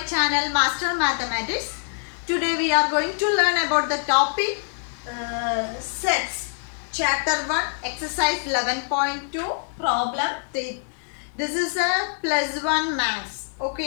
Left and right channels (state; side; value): silent; right; 62 dB below the other